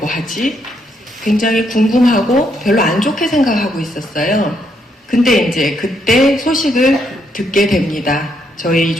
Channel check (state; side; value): normal; both; correlation 0.75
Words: 하지? 굉장히 궁금하고 별로 안 좋게 생각하고 있었어요. 근데 이제 그때 소식을 듣게 됩니다. 저희